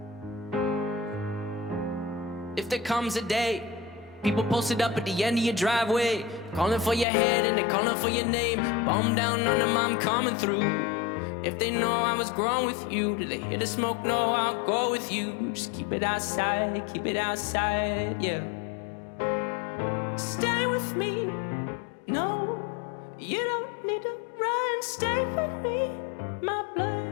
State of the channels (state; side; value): drops out; right; at 7.1 s